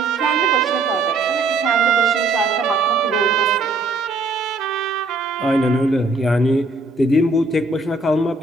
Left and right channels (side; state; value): left; quieter; 3.3 dB